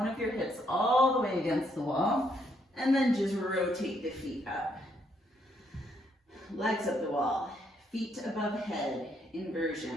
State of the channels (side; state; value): both; normal; correlation 0.73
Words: of your hips all the way against the wall, and then just rotate the feet up. Legs up the wall, feet above head,